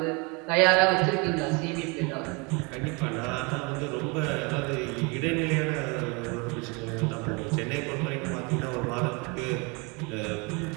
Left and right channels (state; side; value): quieter; left; 29.7 dB